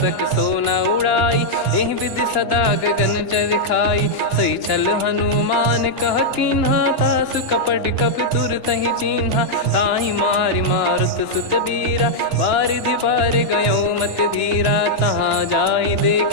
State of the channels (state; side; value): late; right; 2.9 ms